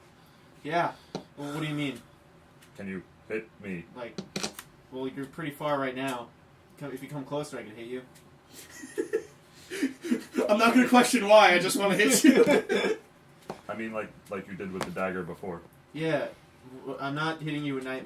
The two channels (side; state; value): both; identical; correlation 1.00